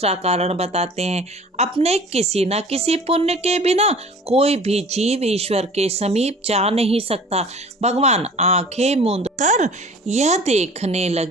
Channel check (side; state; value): both; normal; correlation 0.45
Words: कारण बताते हैं। अपने किसी न किसी पुण्य के बिना कोई भी जीव ईश्वर के समीप जा नहीं सकता। भगवान आंखें मूंद कर यह देखने